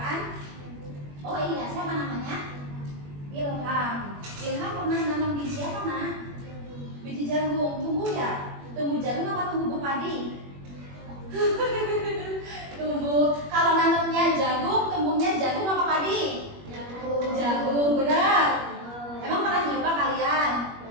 Oh iya, siapa namanya? Ilham. Ilham pernah nanam biji apa, Nak? Biji jagung. Tumbuh ya? Tumbuh jagung apa tumbuh padi? Tumbuh. Kalau nanamnya jagung, tumbuhnya jagung apa padi? Jagung. Jagung.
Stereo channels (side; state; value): left; late; 21 ms